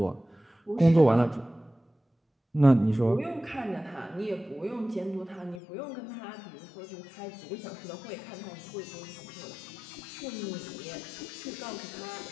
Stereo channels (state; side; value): drops out; right; at 5.6 s